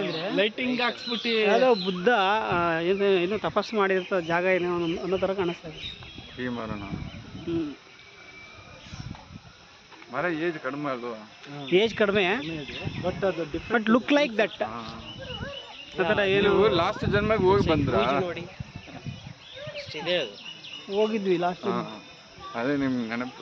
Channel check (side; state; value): both; identical; correlation 1.00